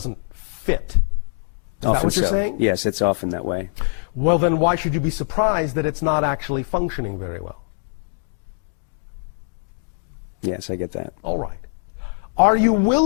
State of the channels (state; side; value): silent; right; digital silence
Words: fit. Is that what you're saying? Yes, it's often that way. Well, then why should you be surprised that it's not actually functioning very well? Yes, I get that. All right. Are you